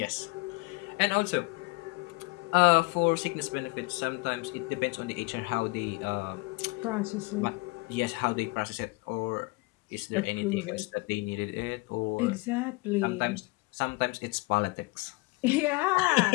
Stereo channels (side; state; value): right; quieter; 25.6 dB